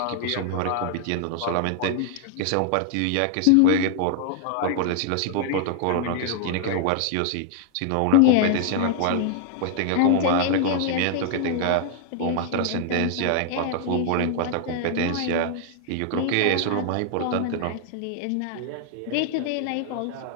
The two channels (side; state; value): both; different; correlation -0.01